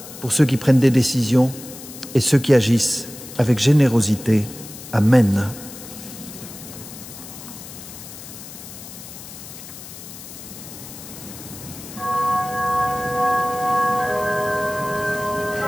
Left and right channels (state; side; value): noise; left; hiss, 14 dB below the sound